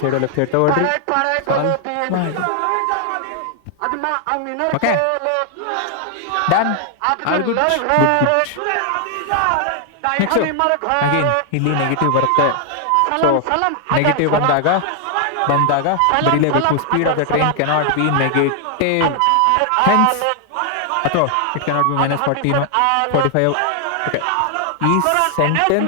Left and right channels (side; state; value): both; different; correlation 0.00